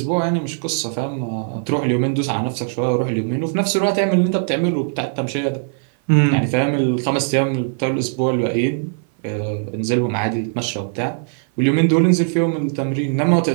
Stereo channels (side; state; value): left; silent; 56 dB below the other